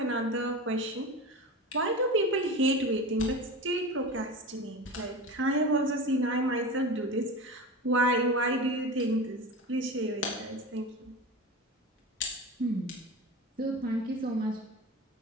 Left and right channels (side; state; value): both; normal; correlation 0.29